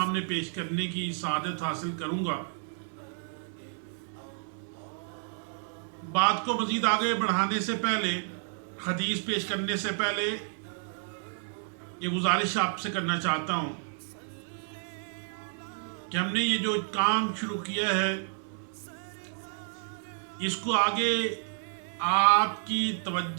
پیش کرنے کی سعادت حاصل کروں گا۔ بات کو مزید آگے بڑھانے سے پہلے، حدیث پیش کرنے سے پہلے یہ گزارش آپ سے کرنا چاہتا ہوں کہ ہم نے یہ جو کام شروع کیا ہے اس کو آگے آپ کی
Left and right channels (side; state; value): left; silent; 57 dB below the other